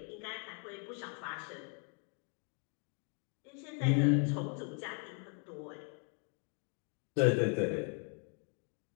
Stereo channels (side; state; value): right; quieter; 39.3 dB